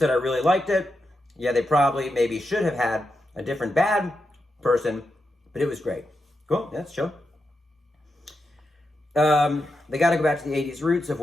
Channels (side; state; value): both; normal; correlation 0.87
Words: I really liked it. Yeah, they probably maybe should have had a different bad person, but it was great. Cool, that's chill. They got to go back to the 80s roots of